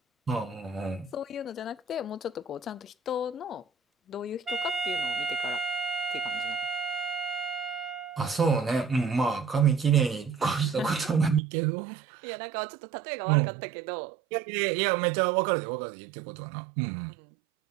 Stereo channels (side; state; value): left; drops out; at 11.4 s